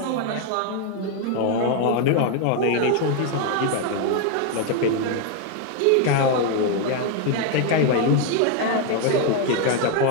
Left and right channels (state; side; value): different; both; correlation 0.01